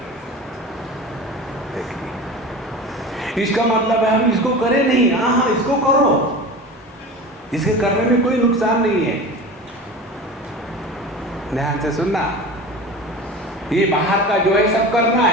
देखिए, इसका मतलब है हम इसको करें नहीं, हाँ इसको करो, इसके करने में कोई नुकसान नहीं है। ध्यान से सुनना, ये बाहर का जो है सब करना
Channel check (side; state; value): both; normal; correlation 0.33